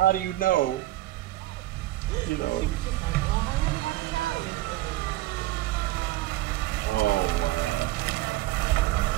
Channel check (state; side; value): quieter; left; 16.6 dB